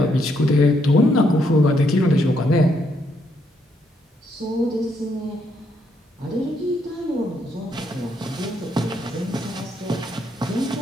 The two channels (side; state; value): both; normal; correlation 0.75